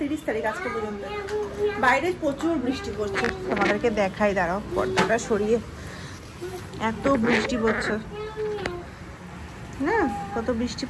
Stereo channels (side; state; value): both; identical; correlation 1.00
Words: 30 তারিখ, আজকে পর্যন্ত বাইরে প্রচুর বৃষ্টি পড়ছে। তোমাদেরকে দেখাই, দাঁড়াও পর্দাটা সরিয়ে, এত বৃষ্টি পড়ছে না, কত বৃষ্টি